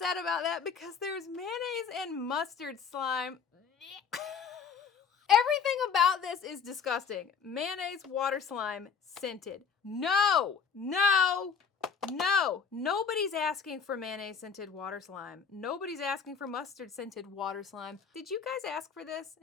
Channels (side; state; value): right; quieter; 6.3 dB